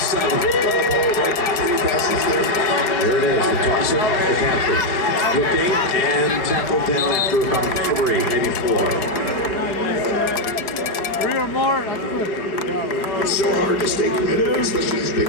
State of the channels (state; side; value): late; right; 4.8 ms